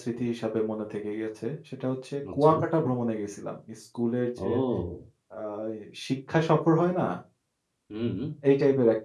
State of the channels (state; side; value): identical; both; correlation 1.00